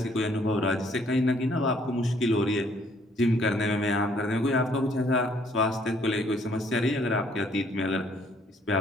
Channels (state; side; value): normal; both; correlation 0.64